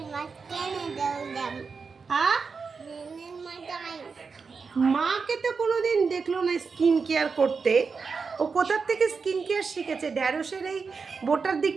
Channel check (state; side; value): quieter; left; 5.1 dB